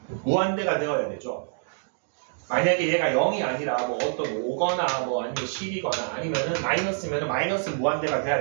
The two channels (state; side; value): silent; left; digital silence